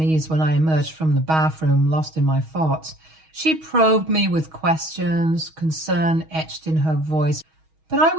when I emerged from the bathroom, lost in my thoughts. She probed me with questions, concern etched in her voice, but I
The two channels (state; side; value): late; left; 6.3 ms